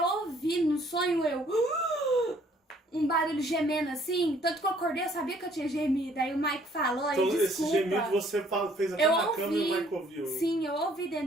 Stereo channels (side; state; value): both; normal; correlation 0.61